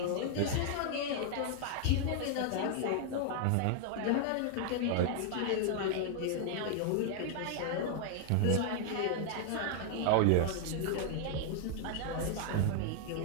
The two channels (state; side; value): different; both; correlation 0.00